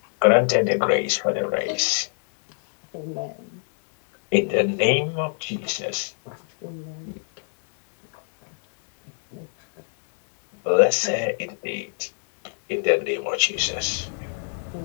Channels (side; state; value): right; silent; digital silence